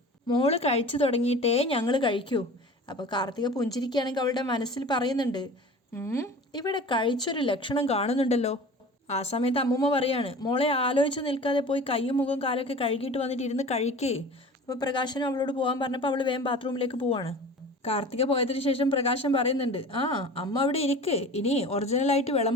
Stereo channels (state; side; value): normal; both; correlation 0.39